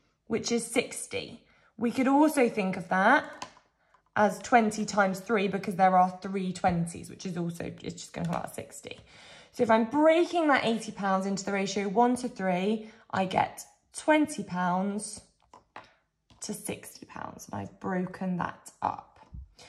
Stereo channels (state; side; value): identical; both; correlation 1.00